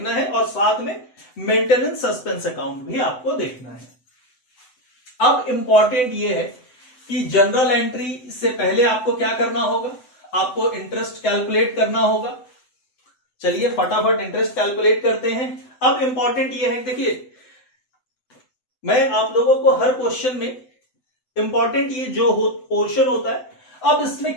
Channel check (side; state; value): right; late; 7.9 ms